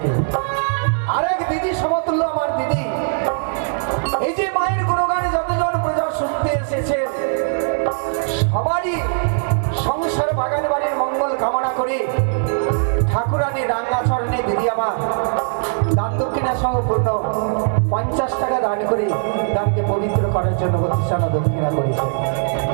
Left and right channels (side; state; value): left; silent; digital silence